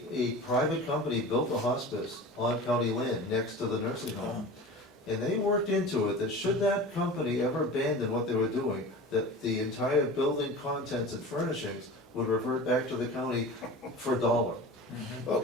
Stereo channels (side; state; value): both; normal; correlation 0.35